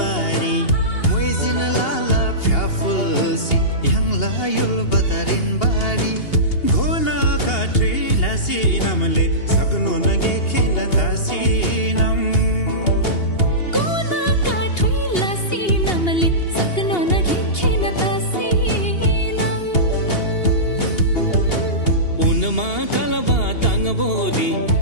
muizin lala fyafulsi yang layul batarin bari घोना काट्री लासी नमले सक्नु नगे खेल तासी नम घोना काट्री लासी नमले सक्नु नगे खेल तासी नम उनमा कलबा तंगबोदी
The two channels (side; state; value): right; late; 2.8 ms